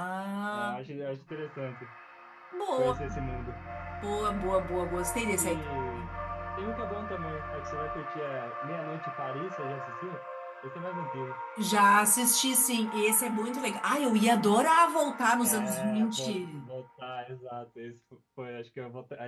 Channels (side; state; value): both; identical; correlation 1.00